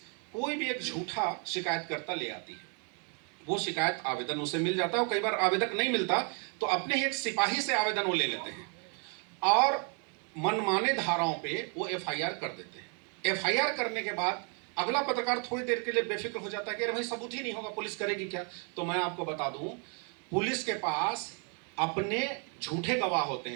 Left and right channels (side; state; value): left; quieter; 39.2 dB